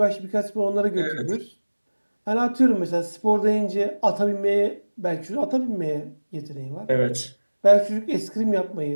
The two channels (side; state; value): both; inverted; correlation -1.00